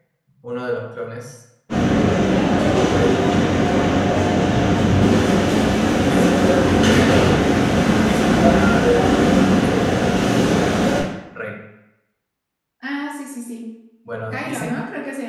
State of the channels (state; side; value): identical; both; correlation 1.00